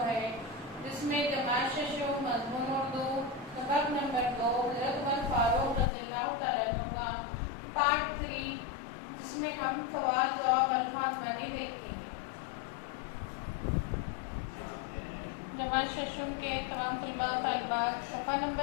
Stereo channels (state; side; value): drops out; right; at 5.9 s